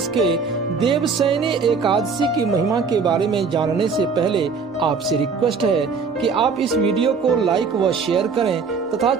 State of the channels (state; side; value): quieter; left; 5.2 dB